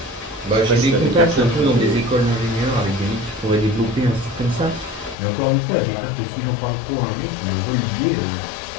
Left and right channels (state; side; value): drops out; right; at 5.2 s